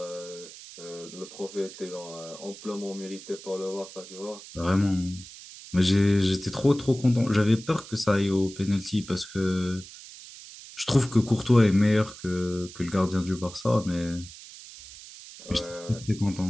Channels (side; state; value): right; noise; hiss, 16 dB below the sound